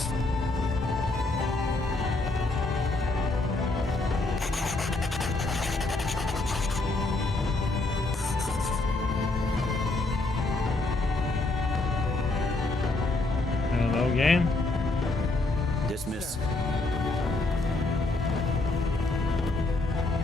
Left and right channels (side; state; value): right; quieter; 3.0 dB